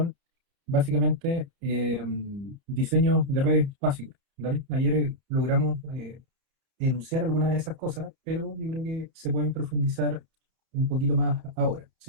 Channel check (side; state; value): left; late; 30 ms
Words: básicamente diseño de redes básicos, ¿vale? Ayer logramos enunciar algunas de esas cosas, pero yo creo que se pueden profundizar un poquito más ahora. Si